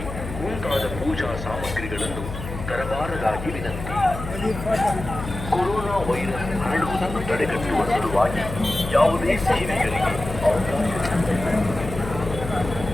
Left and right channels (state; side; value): noise; left; hum, 8 dB below the sound